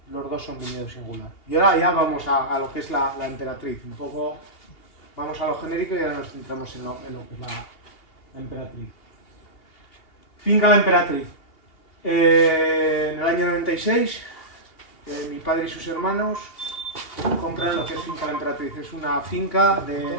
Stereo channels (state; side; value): late; right; 2.8 ms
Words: los dos son viñedo singular. Y ahora ya vamos a lo que es la emperatriz, un poco vamos a lo genérico y ahora nos centramos en lo que es la emperatriz. Finca La Emperatriz. En el año 96, mi padre y sus hermanos compran lo que es Finca La Emperatriz. Es una finca